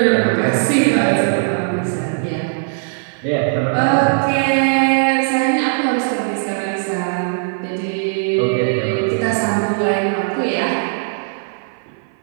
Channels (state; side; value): silent; left; 58 dB below the other